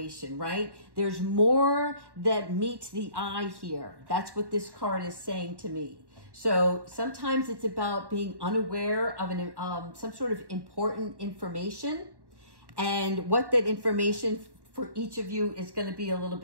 right? There's more that meets the eye here. That's what this card is saying to me. So sometimes it's about being unaware of some sort of important information, and what that information for each of you is going to be a little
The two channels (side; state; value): left; late; 1.1 ms